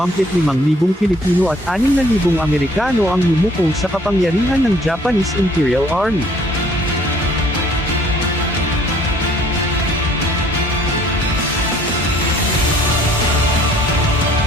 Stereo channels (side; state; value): both; normal; correlation 0.58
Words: Pilipino at 6,000 Amerikano ang yumuko sa kapangyarihan ng Japanese Imperial Army.